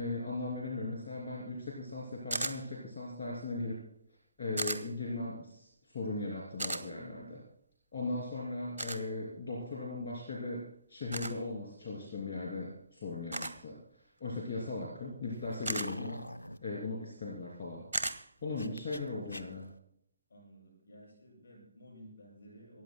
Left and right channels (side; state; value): both; inverted; correlation -0.66